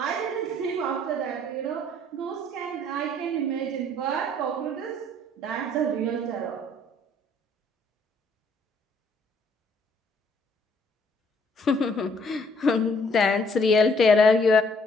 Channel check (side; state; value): both; normal; correlation 0.63